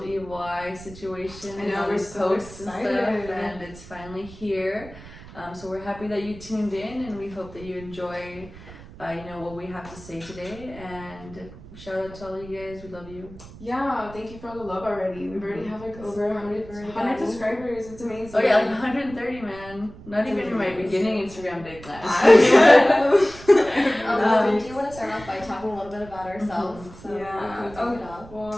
Evil Eye situation. I know, and we're these so posts excited. and stuff, and it's finally here. So we're happy that you tuned in, and we hope that you enjoy what we have to say today. And shout out to all you guys. We love you. Yeah, thank you for all the love already. We've already have like over 100 subscribers. It's amazing. Oh yeah, like 130, man. Not even in my beginning Instagram day class. We do want to start off by talking a little bit about ourselves. So Yeah. we can kick it off.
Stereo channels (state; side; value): noise; right; rumble, 17 dB below the sound